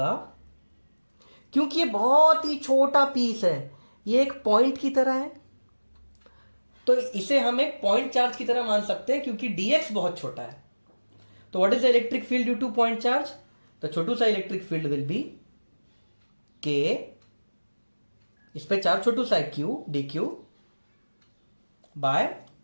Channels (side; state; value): both; inverted; correlation -1.00